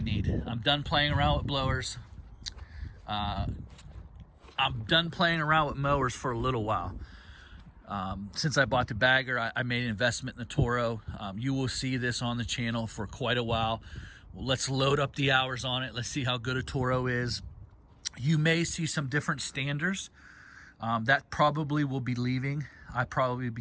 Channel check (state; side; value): identical; both; correlation 1.00